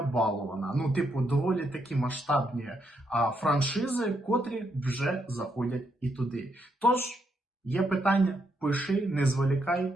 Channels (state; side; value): normal; both; correlation 0.78